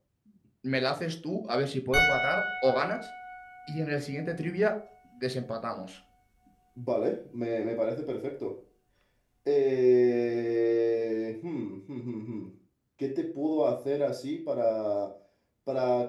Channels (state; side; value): identical; both; correlation 1.00